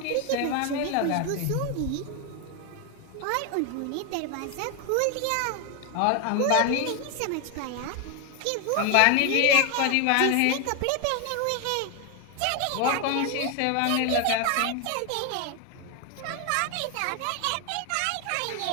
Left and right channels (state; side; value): different; both; correlation 0.01